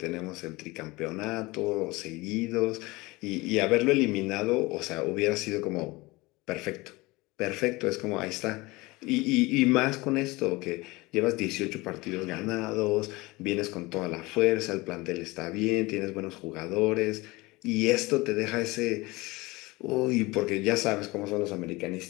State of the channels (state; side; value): quieter; right; 22.3 dB